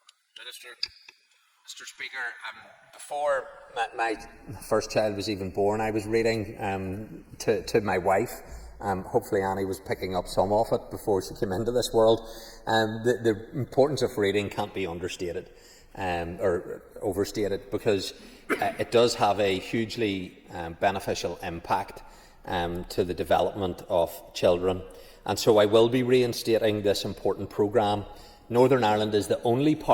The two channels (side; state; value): both; identical; correlation 1.00